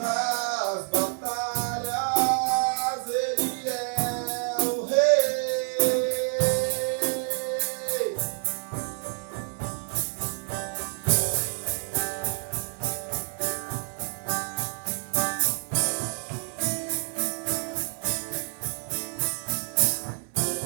batalhas, Ele é o Rei.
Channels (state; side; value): silent; left; 59 dB below the other